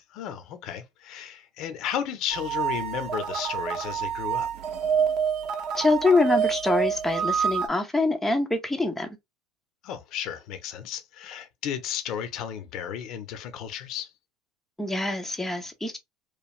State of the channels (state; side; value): normal; both; correlation 0.69